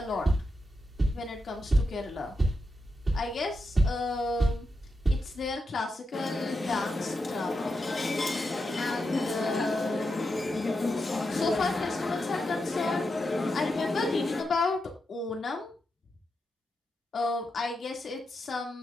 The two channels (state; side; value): normal; both; correlation 0.87